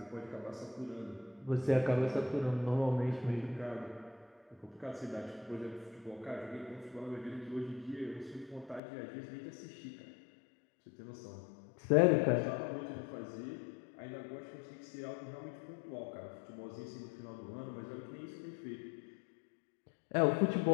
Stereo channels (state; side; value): drops out; right; at 8.8 s